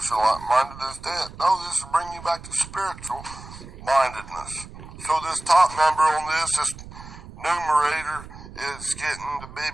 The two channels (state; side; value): noise; right; rumble, 15 dB below the sound